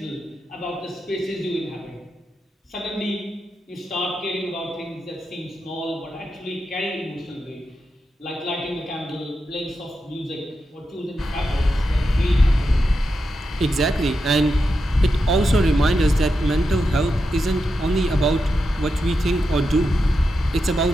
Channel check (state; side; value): normal; both; correlation 0.87